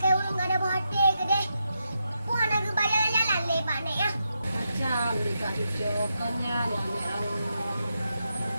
orang ada hotel ke deh. Puan nak bayar jalan lepak Nek ah. macam dekat Cucu kannya nenek awak.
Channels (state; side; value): inverted; both; correlation -0.85